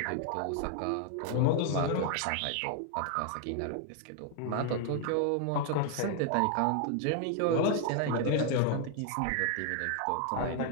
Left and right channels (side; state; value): both; different; correlation 0.00